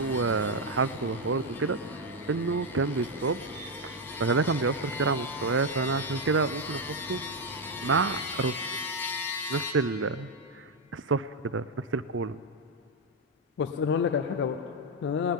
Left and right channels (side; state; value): both; normal; correlation 0.04